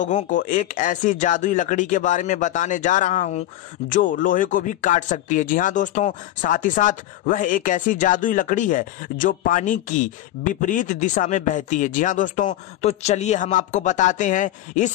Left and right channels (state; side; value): quieter; right; 13.9 dB